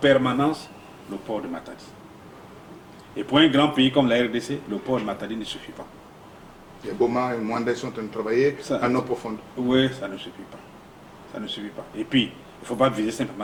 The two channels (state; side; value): identical; both; correlation 1.00